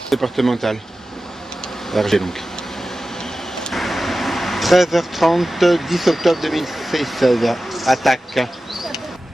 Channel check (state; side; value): normal; both; correlation 0.94